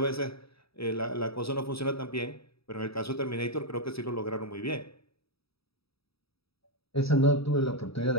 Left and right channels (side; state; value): right; late; 0.77 ms